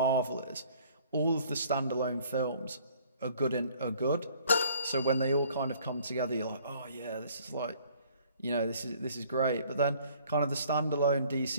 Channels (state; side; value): inverted; both; correlation -0.57